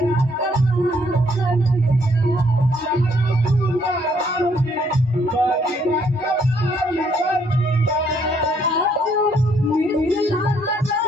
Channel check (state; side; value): normal; both; correlation 0.68